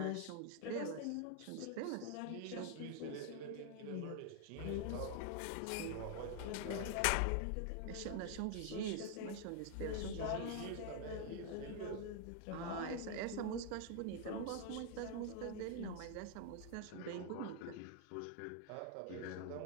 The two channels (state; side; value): different; both; correlation 0.00